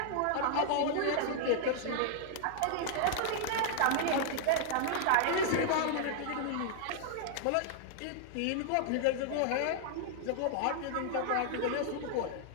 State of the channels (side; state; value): both; different; correlation -0.01